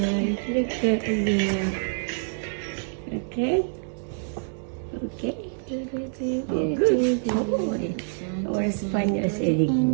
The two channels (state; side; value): silent; left; digital silence